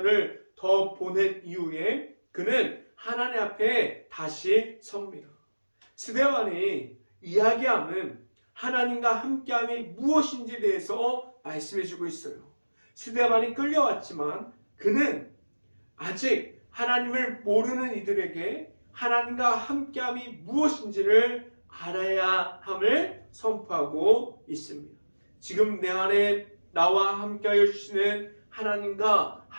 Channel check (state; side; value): inverted; both; correlation -1.00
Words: 더 보낸 이후에 그는 하나님 앞에 다시 섭니다. 스데반이 이야기함은 하나님과 함께함이 무엇인지에 대해서 말씀해주고 있어요. 스데반이 끌려왔지만 그는 아직 하나님을 모르는 이들에게 하나님과 함께함이 무엇인지를 알아야 함을 선포하고 있습니다. 지금 내 안에 나와 함께하여 주시는 하나님과